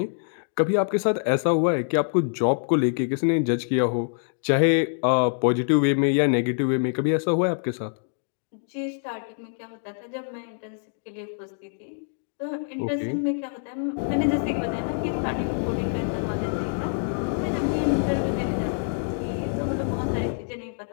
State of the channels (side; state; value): right; silent; digital silence